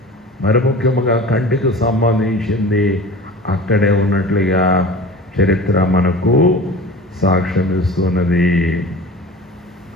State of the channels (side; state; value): both; normal; correlation 0.37